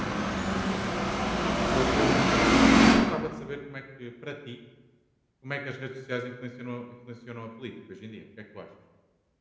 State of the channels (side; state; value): both; identical; correlation 1.00